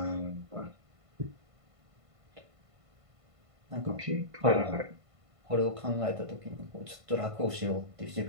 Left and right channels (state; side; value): late; left; 1.5 ms